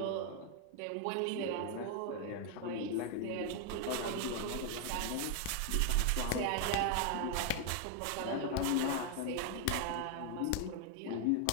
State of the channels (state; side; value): different; both; correlation 0.00